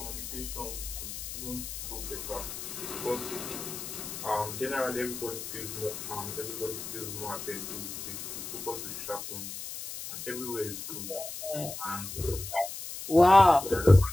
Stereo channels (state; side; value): noise; left; hiss, 8 dB below the sound